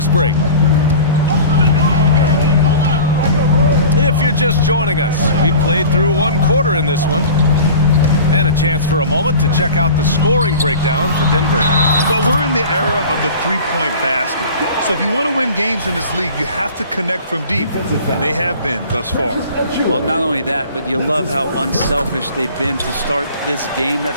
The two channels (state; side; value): inverted; both; correlation -0.40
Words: break. If you're just joining us, we played through 1 quarter in this one. And a chance for a moment to check out the scoring breakdown for Denver. But we're in the era of the three-point basket. So if you want to win games in this league, you have to connect from deep. And they have been thus far. Well, not only that, but you love how unselfish they've been to start this game.